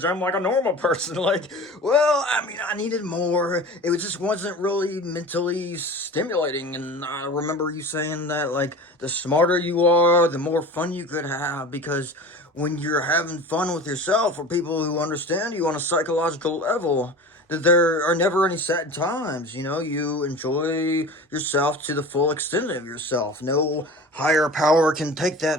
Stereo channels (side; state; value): both; normal; correlation 0.36